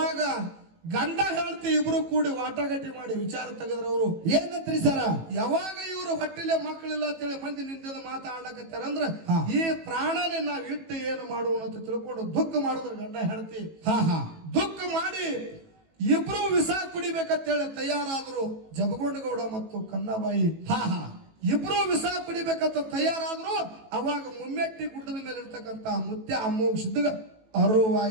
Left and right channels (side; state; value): left; late; 18 ms